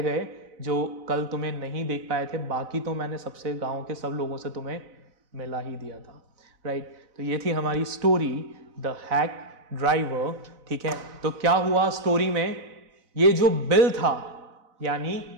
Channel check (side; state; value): left; late; 4.0 ms